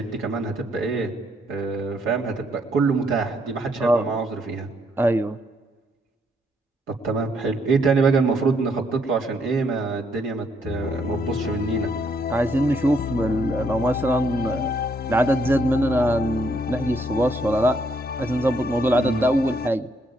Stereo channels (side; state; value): both; normal; correlation 0.72